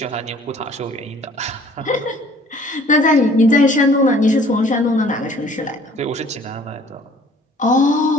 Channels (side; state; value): both; normal; correlation 0.54